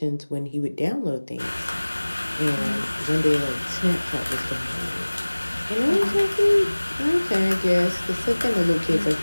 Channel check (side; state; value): both; inverted; correlation -1.00